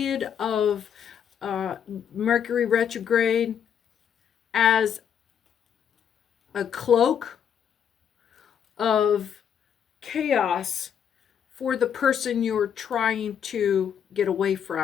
of Mercury retrograde as a cloak of chaos for the person you're trying to get away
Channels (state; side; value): quieter; right; 8.3 dB